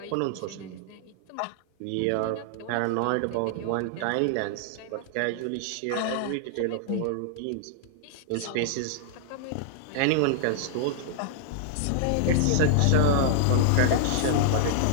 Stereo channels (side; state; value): both; different; correlation -0.01